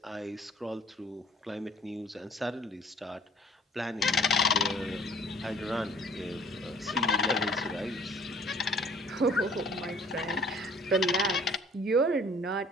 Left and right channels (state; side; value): normal; both; correlation 0.54